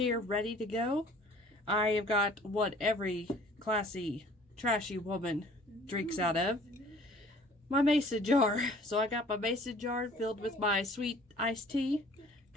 ready to go. I have got what every classy, trashy woman drinks out of. My mason jar. So I got my mason jar filled with my sweet iced tea,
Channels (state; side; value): normal; both; correlation 0.52